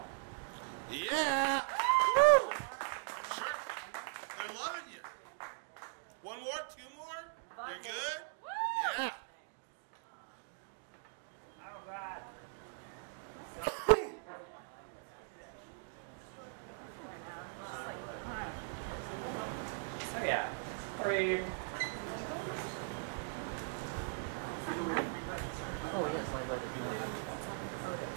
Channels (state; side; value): silent; left; digital silence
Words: Yeah! Woo! Sure. They're loving you. One more? 2 more? You're good? Yeah. Oh, God. So yeah, I'll read.